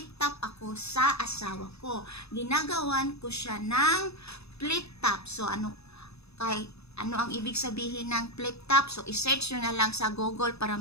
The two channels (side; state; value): right; late; 0.79 ms